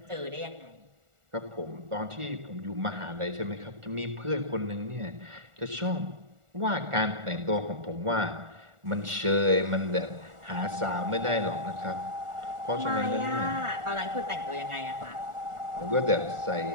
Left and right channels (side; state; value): left; late; 1.4 ms